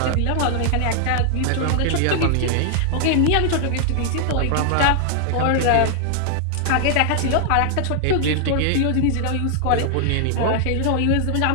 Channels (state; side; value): different; both; correlation 0.00